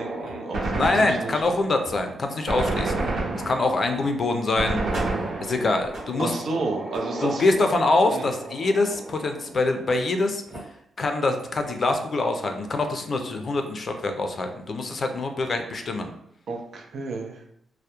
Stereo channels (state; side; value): normal; both; correlation 0.83